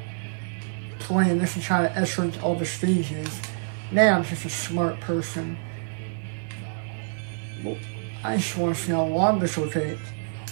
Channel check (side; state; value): left; silent; digital silence